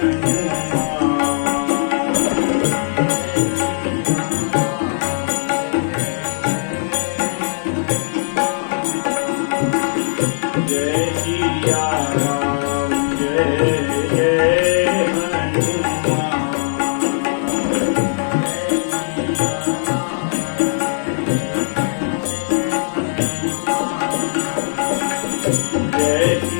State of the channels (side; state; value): right; silent; digital silence